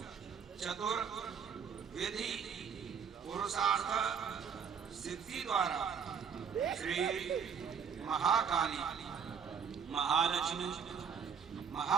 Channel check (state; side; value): quieter; left; 6.8 dB